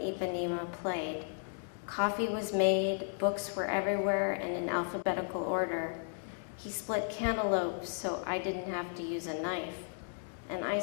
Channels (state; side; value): silent; right; digital silence